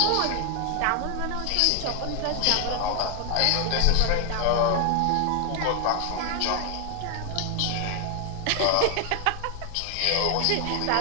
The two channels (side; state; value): both; different; correlation 0.00